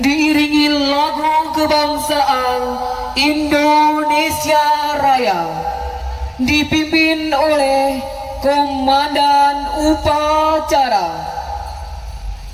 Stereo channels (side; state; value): both; identical; correlation 1.00